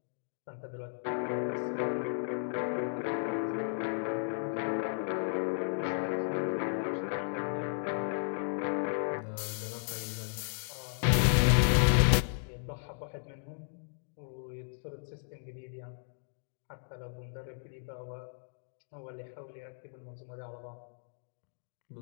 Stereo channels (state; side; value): silent; right; digital silence